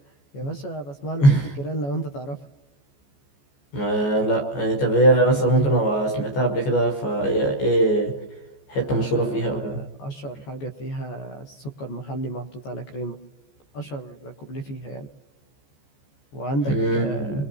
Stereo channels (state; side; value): late; right; 14 ms